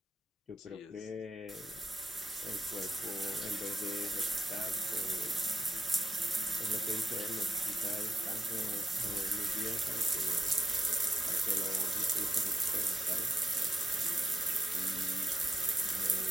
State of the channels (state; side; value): normal; both; correlation 0.86